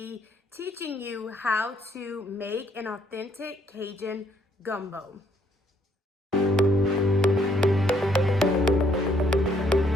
teaching you how to make an authentic Cajun gumbo.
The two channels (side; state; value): both; normal; correlation 0.68